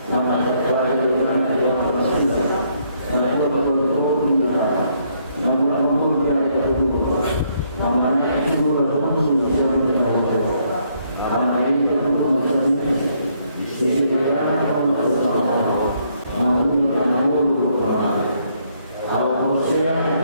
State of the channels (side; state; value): both; inverted; correlation -0.71